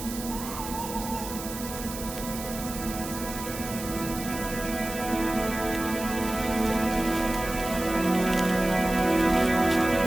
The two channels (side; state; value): right; noise; hiss, 10 dB below the sound